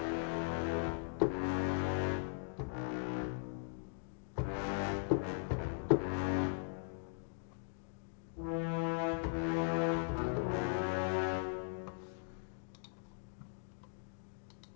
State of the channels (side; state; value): right; silent; digital silence